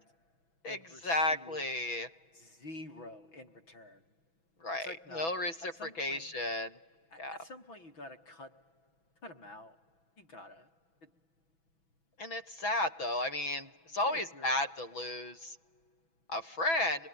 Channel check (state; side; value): late; right; 6.1 ms